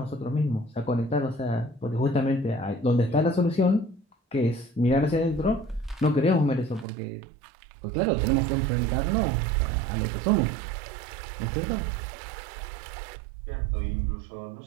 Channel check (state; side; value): drops out; left; at 6.9 s